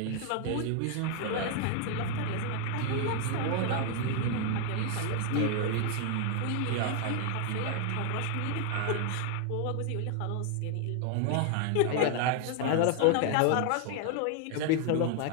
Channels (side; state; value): both; different; correlation 0.00